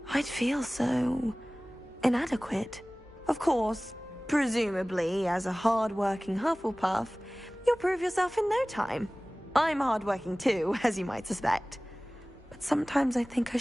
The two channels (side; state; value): both; normal; correlation 0.98